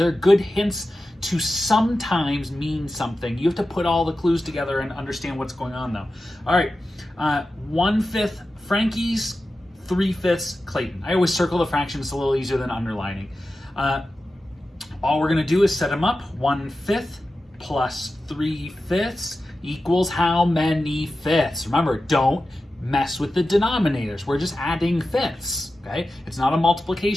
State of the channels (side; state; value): both; normal; correlation 0.93